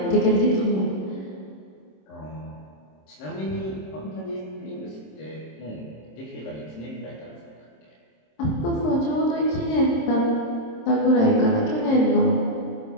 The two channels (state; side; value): late; right; 26 ms